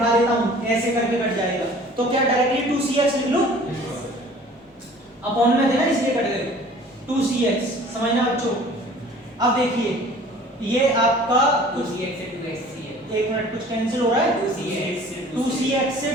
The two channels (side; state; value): both; normal; correlation 0.49